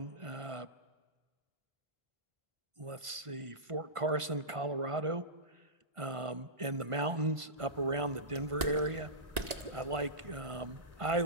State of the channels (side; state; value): left; late; 1.5 ms